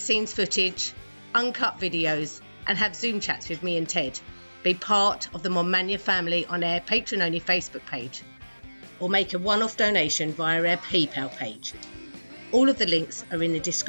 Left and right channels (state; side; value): inverted; both; correlation -1.00